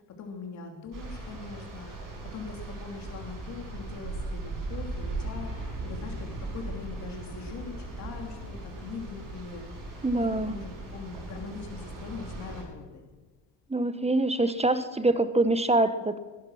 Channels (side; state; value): both; normal; correlation 0.53